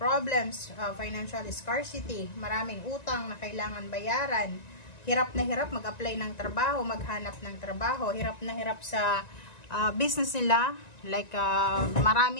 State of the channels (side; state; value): right; late; 1.9 ms